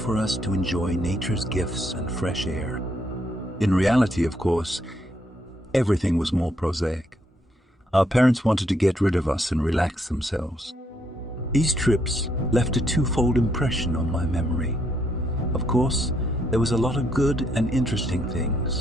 us to enjoy nature's gifts and fresh air. In reality, of course, everything was more prosaic. Our parents wanted to get rid of us and relax themselves. These trips left a twofold impression on my memory. Of course, there was a lot of good and interesting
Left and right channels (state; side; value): normal; both; correlation 0.74